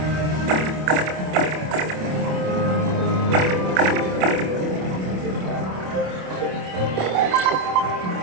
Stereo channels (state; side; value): late; left; 27 ms